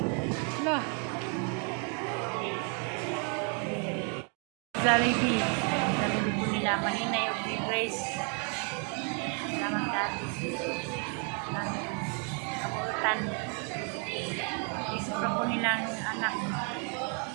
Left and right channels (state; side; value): quieter; left; 38.7 dB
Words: Lah. Jollibee. Jollibee po nila. Maninay of Grace. Salamat dati. Kabuutan. Isipra po nilang anak.